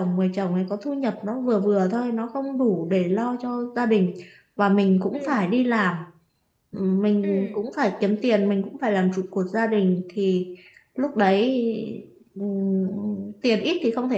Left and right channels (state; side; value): identical; both; correlation 1.00